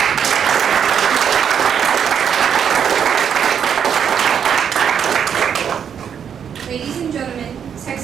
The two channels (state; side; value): quieter; left; 8.0 dB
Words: Ladies and gentlemen,